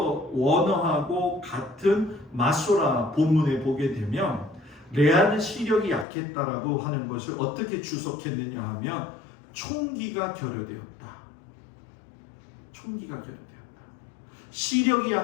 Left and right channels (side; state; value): right; drops out; at 6.1 s